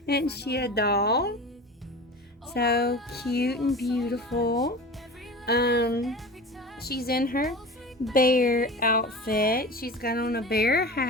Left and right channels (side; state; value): both; normal; correlation 0.34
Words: Isn't she a doll? So cute and beautiful. She's in her bear outfit. She's got on a bear